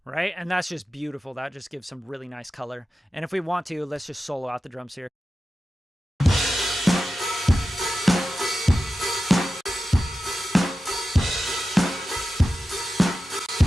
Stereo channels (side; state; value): both; normal; correlation 0.92